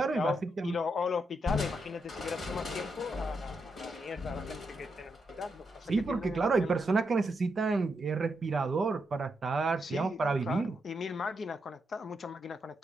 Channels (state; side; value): normal; both; correlation 0.82